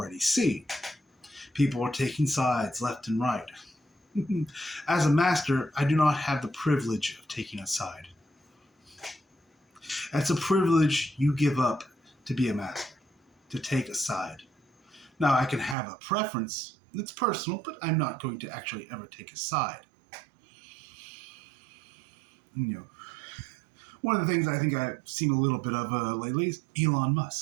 seeing. People are taking sides left and right. As a master, I do not have the privilege of taking a side. That's a privilege you give up to be a master, to take a side. Now, I can have a preference. It's personal, but I'm not going to actually ever take a side. One of the things I think I've seen a little bit of lately is Elon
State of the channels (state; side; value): drops out; left; at 15.8 s